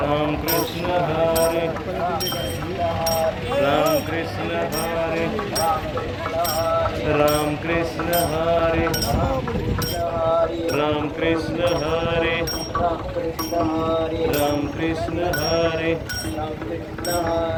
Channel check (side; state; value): both; identical; correlation 1.00